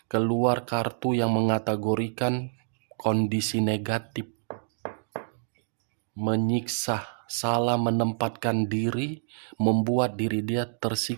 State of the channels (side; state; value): left; silent; digital silence